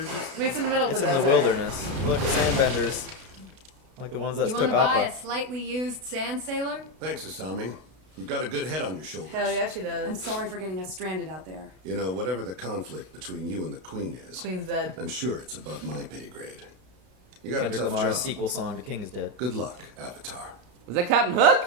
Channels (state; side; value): late; left; 32 ms